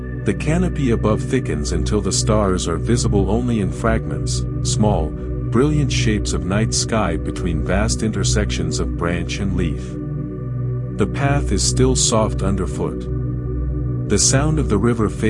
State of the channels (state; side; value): identical; both; correlation 1.00